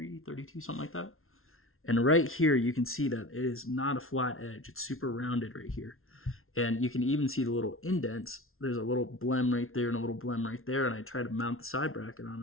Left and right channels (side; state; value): right; late; 0.62 ms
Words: 32, something like that. And right here, you can see that it is not a flat edge. It's super rounded right here. And you can even see the little indents. There's a little blem right there and a little blem right there. And I try to mount the side bracket on.